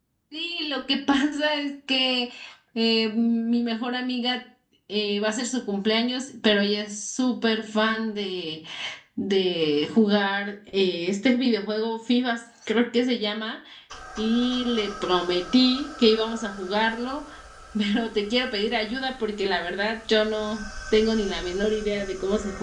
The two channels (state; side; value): identical; both; correlation 1.00